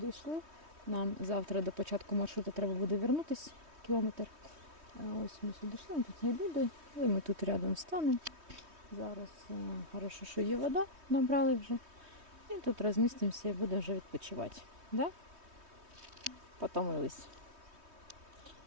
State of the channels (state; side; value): late; left; 3.2 ms